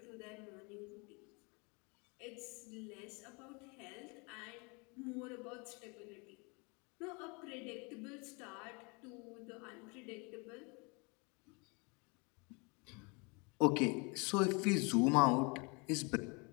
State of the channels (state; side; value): quieter; right; 30.9 dB